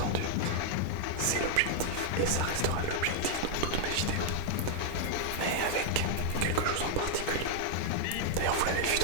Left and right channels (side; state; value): both; different; correlation 0.00